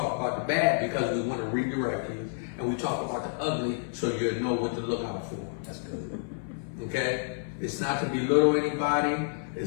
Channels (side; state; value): right; silent; 58 dB below the other